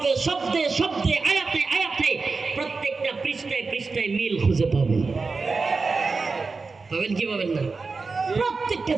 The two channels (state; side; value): quieter; left; 4.3 dB